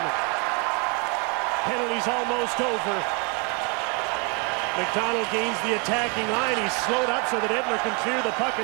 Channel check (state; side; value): quieter; left; 33.0 dB